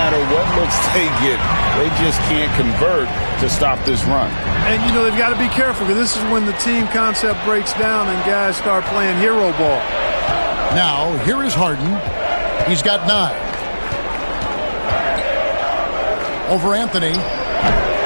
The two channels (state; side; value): inverted; both; correlation -1.00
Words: what looks they get, they just can't convert to stop this run. And, you know, they've got to be careful because this is when the team concept breaks down and guys start playing hero ball. Now, here is Harden. He's got 9. Over Anthony.